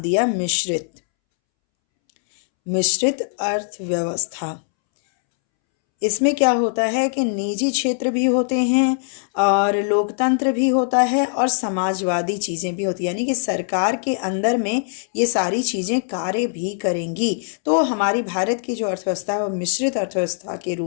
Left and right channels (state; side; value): silent; right; 65 dB below the other